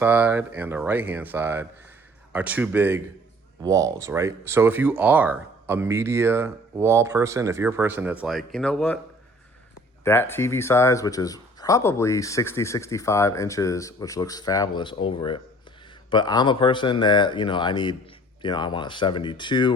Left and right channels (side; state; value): both; normal; correlation 0.52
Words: and the right-hand side are 2 big walls, right? So if you are a media wall person, if you're a person that's like, you know what, that TV size, which is probably 60, 65 inches, which looks fabulous over it, but I'm a person that, I need, I want a